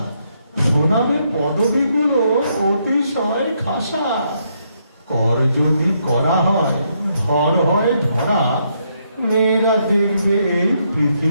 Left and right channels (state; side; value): inverted; both; correlation -0.76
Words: শোনাবে পদবীগুলো অতিশয় খাসা। কর যদি করা হয়, ধর হয় ধরা, মেয়েরা দেখবে এই